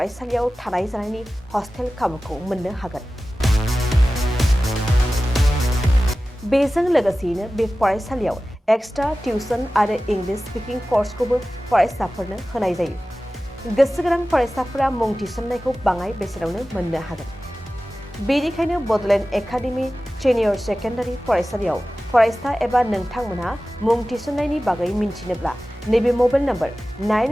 थानाय जानायनि हस्टेल खाबुखौ मोननो हागोन। बेजों लोगोसेयैनो बे फरायसालियाव एक्सट्रा टिउसन आरो इंलिश स्पिकिं कर्सखौबो फरायसाफोरनो होनाय जायो। गोसो गोनां फरायसाफोरा मुं थिसननायखौ बाङाय बेसेनावनो मोननो हागोन। बेनिखायनो बडलेण्ड एकाडेमि सिनियर सेकेन्डारि फरायसालियाव फरायसा एबा नोंथांमोनहा मुं थिसननायनि बागै मिन्थिनोब्ला नैबे मबाइल नम्बर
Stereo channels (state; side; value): normal; both; correlation 0.96